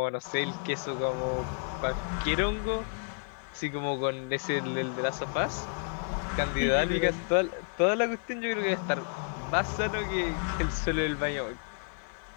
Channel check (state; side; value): silent; right; 57 dB below the other